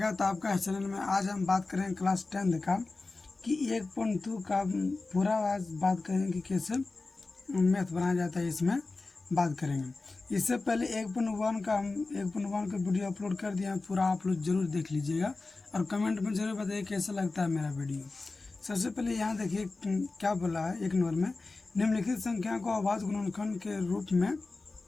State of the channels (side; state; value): right; quieter; 3.6 dB